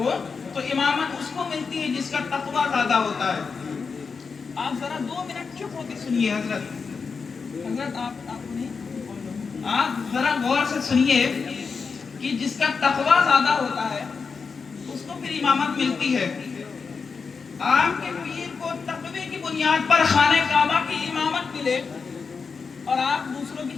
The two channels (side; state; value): right; quieter; 5.2 dB